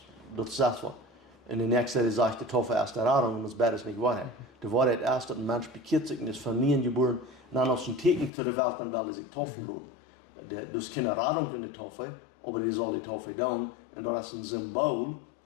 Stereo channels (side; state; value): right; drops out; at 8.3 s